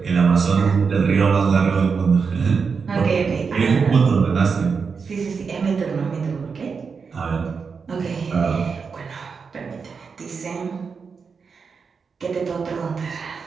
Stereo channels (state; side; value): quieter; left; 5.5 dB